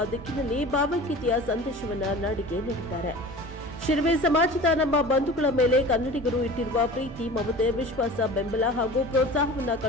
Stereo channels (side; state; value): both; normal; correlation 0.38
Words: ದಿಕ್ಕಿನಲ್ಲಿ ಭಾವೈಕ್ಯತೆಯ ಸಂದೇಶವನ್ನು ನಾಡಿಗೆ ನೀಡಿದ್ದಾರೆ. ಶಿರವಿ ಸಮಾಜದ ನಮ್ಮ ಬಂಧುಗಳ ಮೇಲೆ ಕನ್ನಡಿಗರು ಇಟ್ಟಿರುವ ಪ್ರೀತಿ, ಮಮತೆ, ವಿಶ್ವಾಸ, ಬೆಂಬಲ ಹಾಗೂ ಪ್ರೋತ್ಸಾಹವನ್ನು